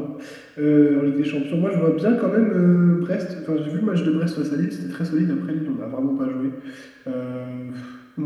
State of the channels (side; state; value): both; identical; correlation 1.00